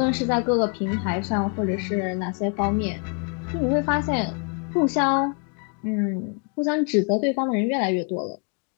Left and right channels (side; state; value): right; quieter; 38.7 dB